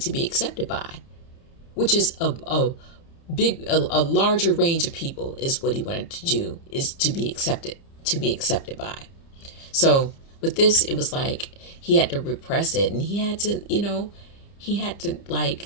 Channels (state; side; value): late; right; 30 ms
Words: to be accepted by, which is a larger range of people is what he wanted to do, is to be accepted by. So with this, it was like he had to repress it, and he had to